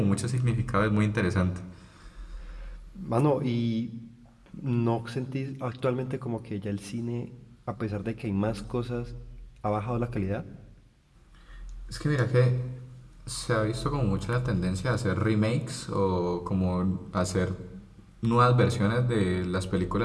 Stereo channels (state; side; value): identical; both; correlation 1.00